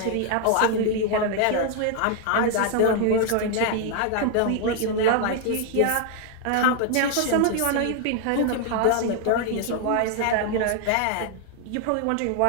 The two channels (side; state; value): both; different; correlation 0.00